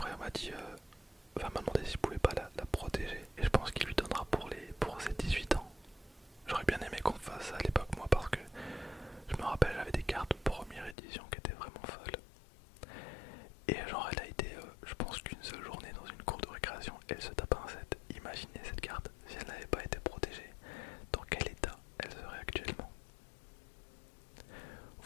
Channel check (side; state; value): right; drops out; at 11.0 s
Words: m'a dit m'a demandé s'il pouvait pas la protéger et je pense qu'il lui donnera pour ses 18 ans. J'aurais bien aimé qu'on fasse ça à l'époque moi parce que je me rappelle j'avais des cartes première édition qui étaient vraiment folles et genre elle a été je pense qu'une seule journée dans une cour de récréation elle se tape un set. Imaginez cette carte si elle n'avait pas été protégée, dans quel état elle serait actuellement.